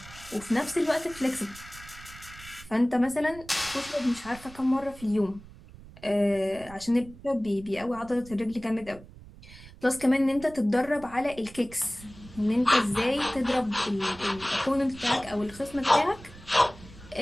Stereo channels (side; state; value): right; noise; rumble, 19 dB below the sound